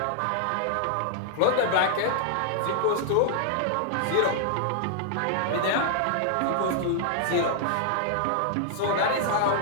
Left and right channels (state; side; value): different; both; correlation 0.00